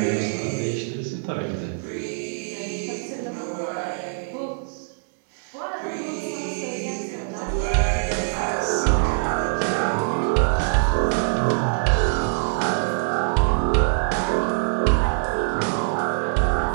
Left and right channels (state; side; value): silent; left; digital silence